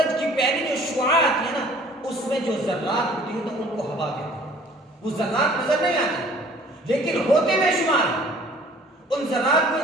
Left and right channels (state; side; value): normal; both; correlation 0.53